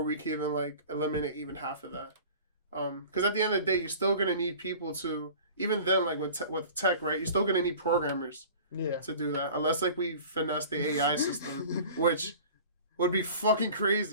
we can even, like, eliminate even half of that. Because at the end of the day, you're still going to need people to, even then, like, with tech, right, you're still going to need programmers to do that, unless, like, we finesse the AI system, which would be fucking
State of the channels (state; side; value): inverted; both; correlation -0.42